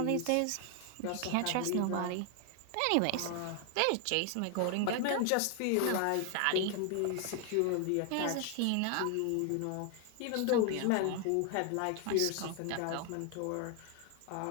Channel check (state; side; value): different; both; correlation 0.01